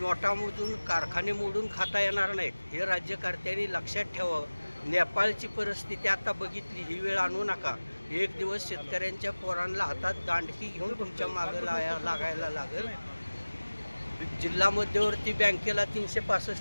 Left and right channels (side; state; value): both; inverted; correlation -1.00